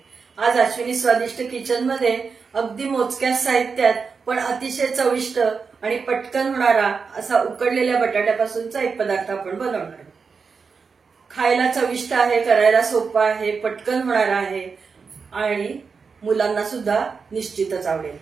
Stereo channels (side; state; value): left; quieter; 5.3 dB